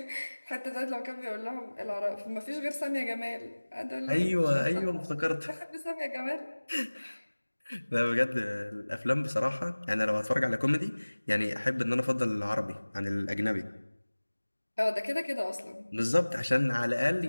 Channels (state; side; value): inverted; both; correlation -1.00